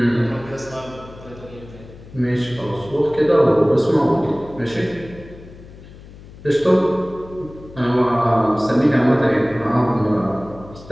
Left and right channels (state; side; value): noise; left; hum, 19 dB below the sound